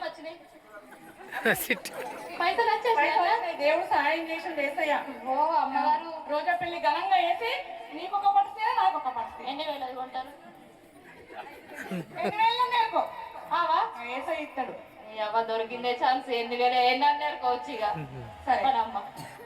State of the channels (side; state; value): both; identical; correlation 1.00